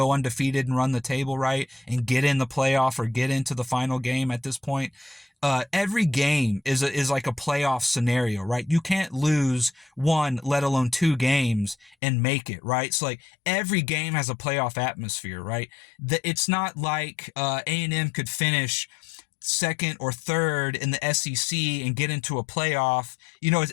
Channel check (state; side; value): drops out; right; at 12.0 s